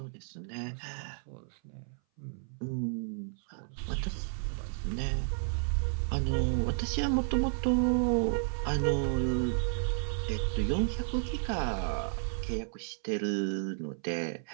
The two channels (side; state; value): left; silent; 56 dB below the other